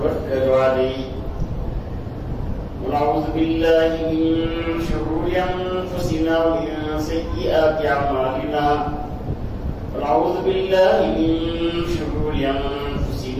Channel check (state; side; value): identical; both; correlation 1.00